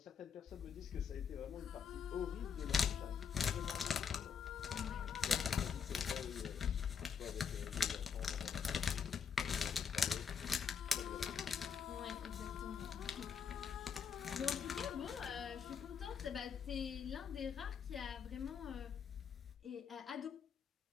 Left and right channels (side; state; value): right; quieter; 6.8 dB